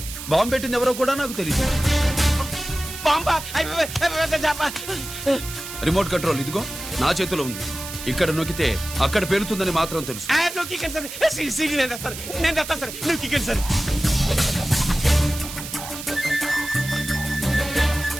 బాంబు పెట్టింది ఎవరో కూడా నాకు తెలియదు. రిమోట్ కంట్రోల్ ఇదిగో నా చేతిలో ఉంది. ఇక్కడ నొక్కితే అక్కడ పేలుతుందని మాత్రం తెలుసు. నేను తెస్తాను సార్. నువ్వు కిక్కండి సార్.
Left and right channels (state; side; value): noise; right; hiss, 10 dB below the sound